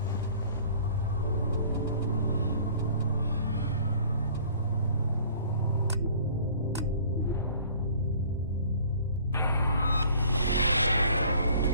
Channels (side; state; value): both; inverted; correlation -0.52